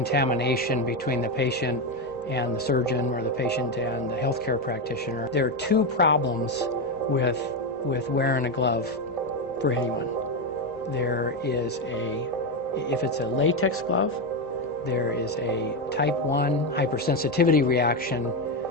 between the patient and the surgeon, or the patient and the healthcare practitioner. There are 2 problems with wearing a glove for anyone. There is if it's a latex glove, there is a type 1 hypersensitivity reaction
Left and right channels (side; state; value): both; normal; correlation 0.10